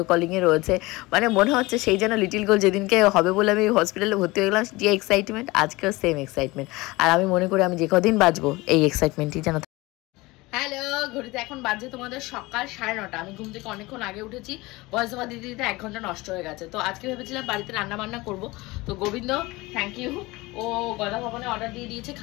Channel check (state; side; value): quieter; right; 21.8 dB